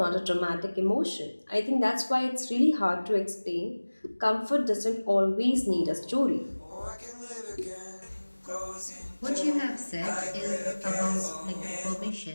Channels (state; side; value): inverted; both; correlation -1.00